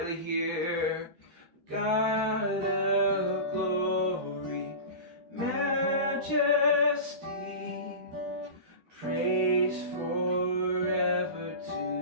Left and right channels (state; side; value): late; left; 13 ms